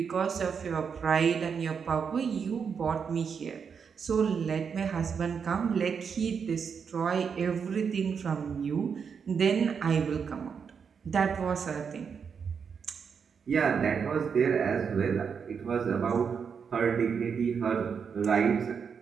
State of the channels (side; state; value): left; quieter; 6.4 dB